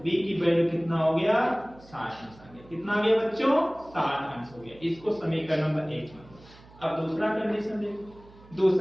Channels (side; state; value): right; noise; hum, 23 dB below the sound